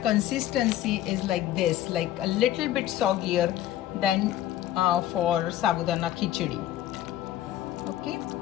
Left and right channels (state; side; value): quieter; right; 12.8 dB